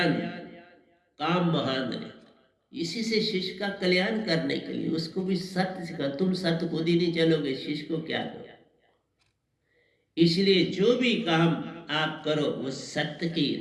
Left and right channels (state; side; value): identical; both; correlation 1.00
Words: काम महान रे। इसी से शिष्य का कल्याण करने के लिए उसको भी सत्य सिखा। तुम सत्य खुद ही नहीं चलोगे, शिष्य को क्या करो। इसलिए जो भी काम आप करो वो सत्य की